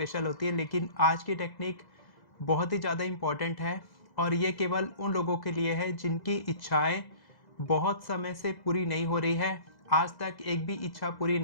होती है, लेकिन आज की टेक्निक बहुत ही ज़्यादा इम्पॉर्टेंट है और ये केवल उन लोगों के लिए है जिनकी इच्छाएं बहुत समय से पूरी नहीं हो रही है। आज तक एक भी इच्छा पूरी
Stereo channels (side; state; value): right; late; 2.0 ms